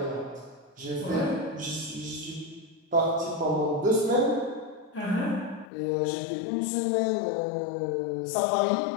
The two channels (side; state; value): right; drops out; at 5.7 s